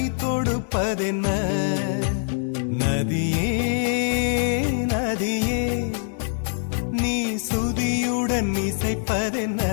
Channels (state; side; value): silent; right; digital silence